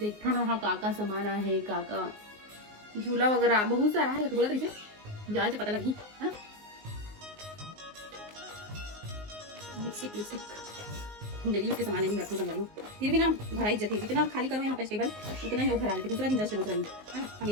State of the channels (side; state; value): left; late; 19 ms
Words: ना हाँ काका सामान है, काका झूला वगैरह बहुत सारा है। बोला तरीके जाए से पता लगी है ना। लिपस्टिक डेली उसके सामान नहीं रखो संभालो, फिर भी ना भरा इज्जत है। जितना खाली करो यहाँ पे टेबल उतना ही लोग भरा लेते। दूसरा दिन जस्ट दूसरा दिन है ना,